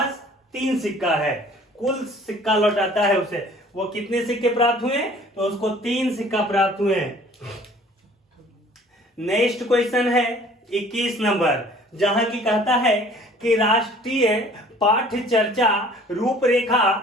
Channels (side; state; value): both; normal; correlation 0.52